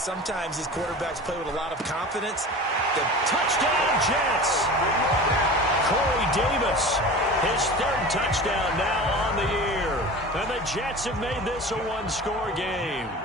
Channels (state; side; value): normal; both; correlation 0.35